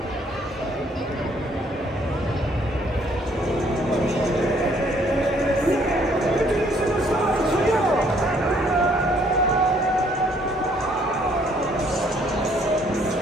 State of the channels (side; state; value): both; normal; correlation 0.64